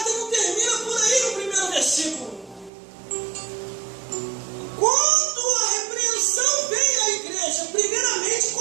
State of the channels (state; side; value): drops out; left; at 2.7 s